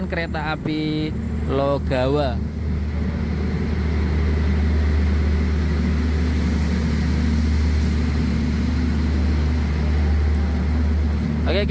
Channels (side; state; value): both; identical; correlation 1.00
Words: kereta api Logawa.